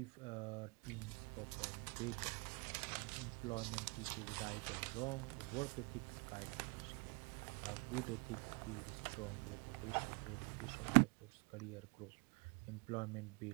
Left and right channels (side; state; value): left; quieter; 31.2 dB